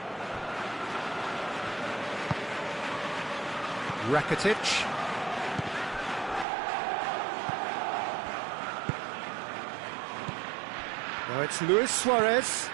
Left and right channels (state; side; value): drops out; left; at 6.5 s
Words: Rakitic. Now it's Luis Suarez.